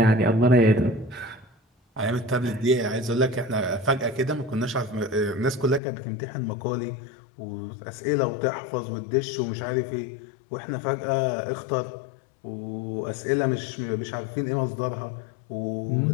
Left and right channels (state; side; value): drops out; right; at 5.8 s